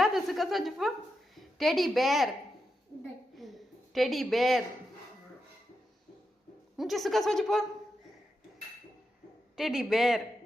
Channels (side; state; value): both; normal; correlation 0.87